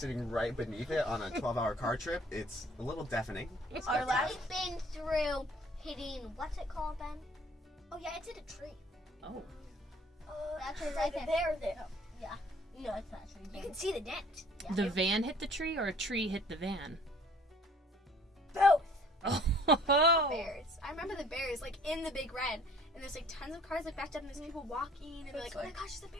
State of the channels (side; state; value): both; normal; correlation 0.55